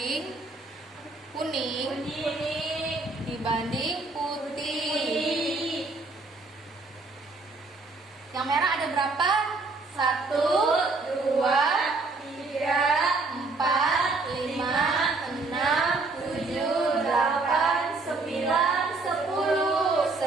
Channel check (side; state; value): left; quieter; 3.6 dB